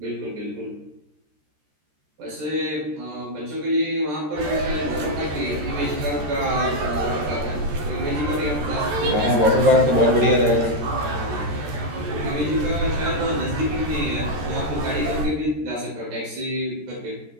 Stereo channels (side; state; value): left; late; 13 ms